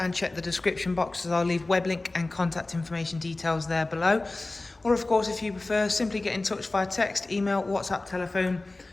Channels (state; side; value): quieter; right; 3.0 dB